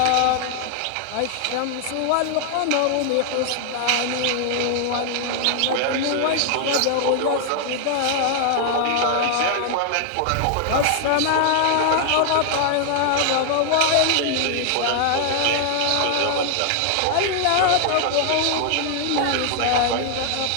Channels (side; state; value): both; different; correlation 0.00